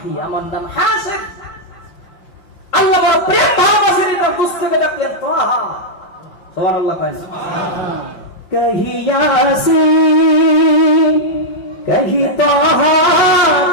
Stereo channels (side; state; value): right; late; 5.6 ms